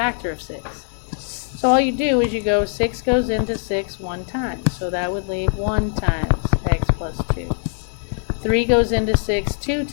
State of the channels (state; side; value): silent; right; 65 dB below the other